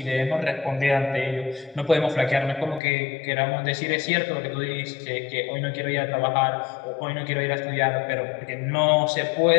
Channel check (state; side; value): drops out; right; at 2.8 s